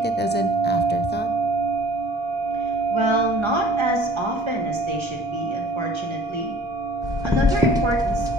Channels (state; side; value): normal; both; correlation 0.50